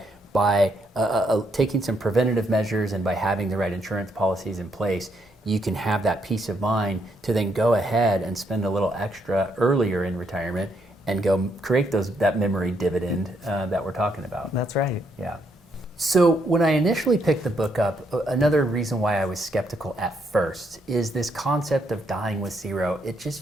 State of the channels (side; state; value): both; normal; correlation 0.75